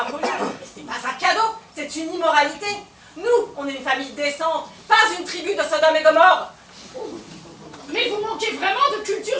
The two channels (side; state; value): both; identical; correlation 1.00